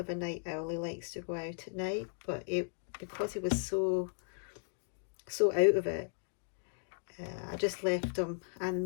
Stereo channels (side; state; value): right; silent; digital silence